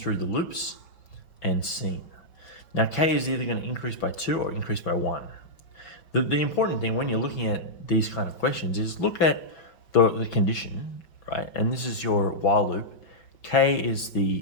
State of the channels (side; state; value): right; late; 5.5 ms